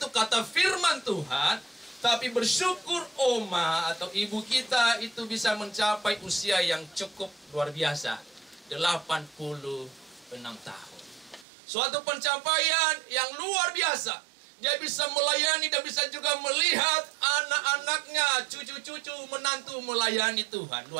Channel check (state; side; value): drops out; left; at 11.5 s